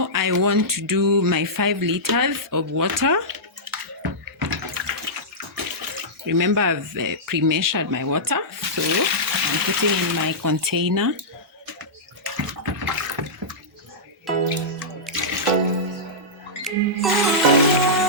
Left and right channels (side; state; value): both; normal; correlation -0.14